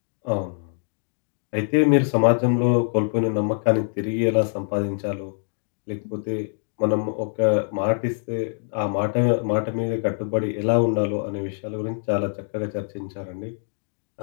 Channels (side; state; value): right; silent; digital silence